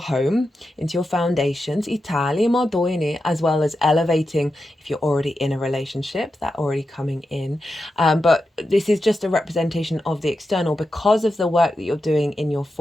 into your foundations, as well as elevating if you're already in a relationship, that already coming in. But this is just a representation of the external because of the work that you're doing in your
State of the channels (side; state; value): both; normal; correlation 0.89